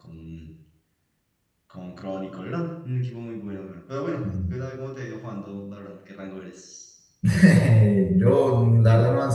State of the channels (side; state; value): both; identical; correlation 1.00